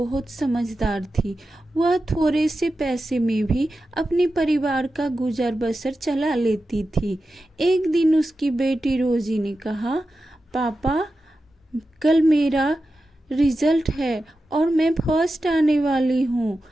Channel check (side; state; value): both; normal; correlation 0.92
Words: समझदार थी। वह थोड़े से पैसे में भी अपने परिवार का गुजर बसर चला लेती थी। एक दिन उसकी बेटी रोजी ने कहा, पापा, कल मेरा रिजल्ट है और मैं फर्स्ट आने वाली हूँ।